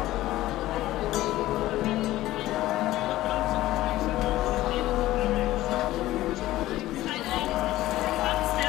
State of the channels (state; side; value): quieter; right; 15.8 dB